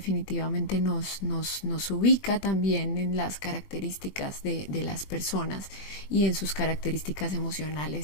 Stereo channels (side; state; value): right; late; 20 ms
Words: nos ubica también en las características de las personas y en sus características